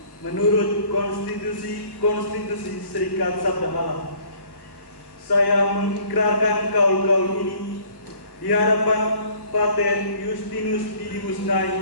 menurut konstitusi Serikat Sabda Allah. Saya mengikrarkan kaul ini di hadapan Pater Justinus Didimus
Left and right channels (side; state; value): right; late; 1.1 ms